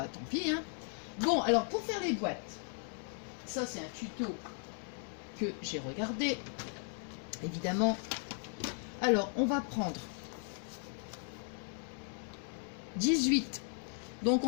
tant pis, hein. Bon, alors, pour faire les boîtes, ça, c'est un tuto que j'ai regardé, évidemment. Alors, on va prendre 18. Donc,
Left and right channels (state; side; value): silent; right; 53 dB below the other